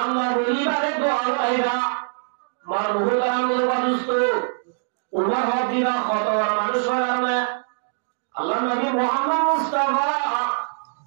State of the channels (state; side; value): silent; left; digital silence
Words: বলিবারে তো আইবা মার বহু কারণে অদুষ্ট উমর হদিরা কত মানুষ কারণে আল্লাহ নবী মুহাম্মদ মুস্তাফা